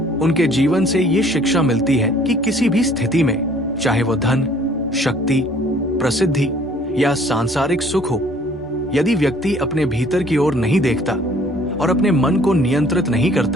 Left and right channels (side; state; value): both; normal; correlation 0.56